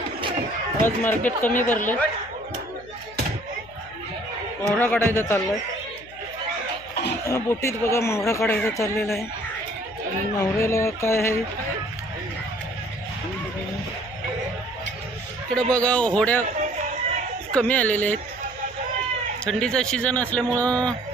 आज मार्केट कमी भरले। मोहरा काढायचा चाललाय, बोटीत बघा मोहरा काढायचा चाललेला आहे। आणि मोहऱ्याला काय आहे इकडे बघा, होड्या कमी आलेल्या आहेत। थंडीचा सीझन असल्यामुळं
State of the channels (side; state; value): left; noise; hum, 23 dB below the sound